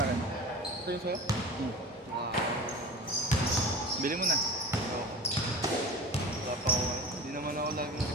akin. Ito yung sa'yo? Hmm. Wow. Bili mo na. Oo. Wala pa ako. Hindi naman ako lagi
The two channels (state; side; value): normal; both; correlation 0.34